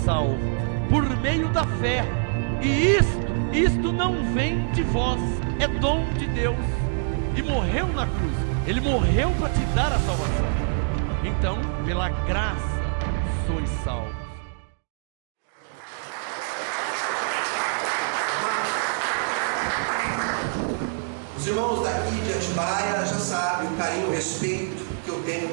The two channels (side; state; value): left; silent; digital silence